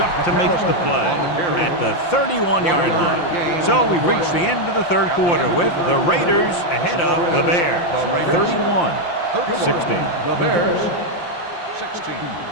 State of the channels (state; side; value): late; right; 5.8 ms